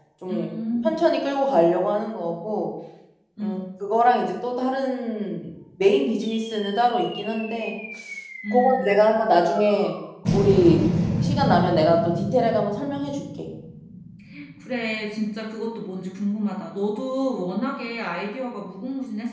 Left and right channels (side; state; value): both; identical; correlation 1.00